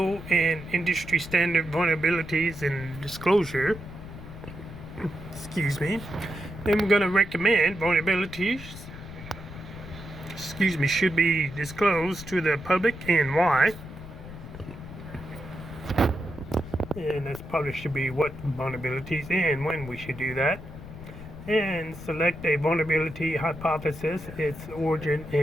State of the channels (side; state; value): left; noise; rumble, 13 dB below the sound